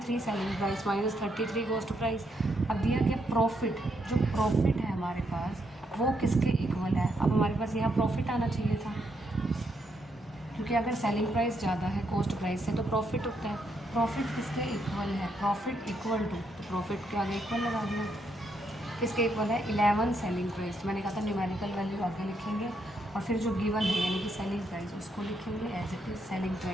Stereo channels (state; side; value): normal; both; correlation 0.77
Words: selling price minus 33 cost price. अब दिया गया प्रॉफिट, जो प्रॉफिट है हमारे पास वो किसके इक्वल है। अब हमारे पास यहाँ प्रॉफिट आना चाहिए था, क्योंकि अगर सेलिंग प्राइस ज़्यादा है कॉस्ट प्राइस से तो प्रॉफिट होता है। प्रॉफिट किसके इक्वल है, प्रॉफिट इक्वल टू, तो प्रॉफिट के आगे इक्वल लगा दिया। किसके इक्वल है, 11 सेलिंग प्राइस। मैंने कहा था न्यूमेरिकल वैल्यू आगे लिखेंगे और फिर जो गिवन है यानी कि सेलिंग प्राइस उसको लिखेंगे, as it is selling